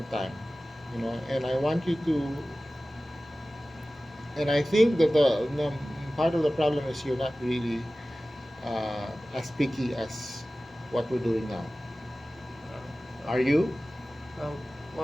time, and I want you to, and I think that the part of the problem is you're not really as picky as what we're doing now. Are you?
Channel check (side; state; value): both; normal; correlation 0.96